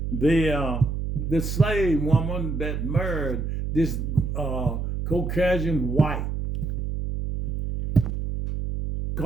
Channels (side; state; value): right; noise; hum, 2 dB below the sound